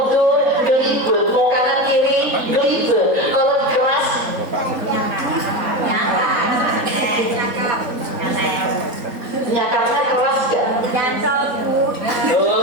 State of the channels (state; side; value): late; left; 3.9 ms